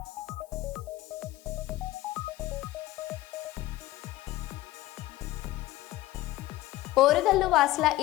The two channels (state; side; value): quieter; right; 16.8 dB